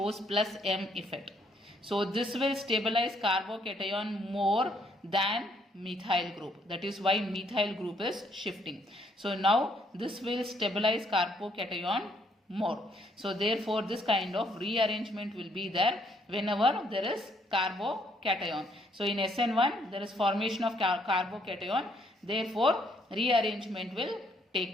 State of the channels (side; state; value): both; normal; correlation 0.69